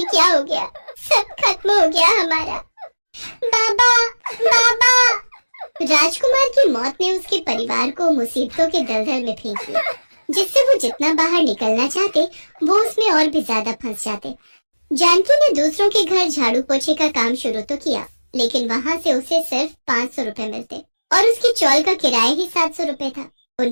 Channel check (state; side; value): inverted; both; correlation -1.00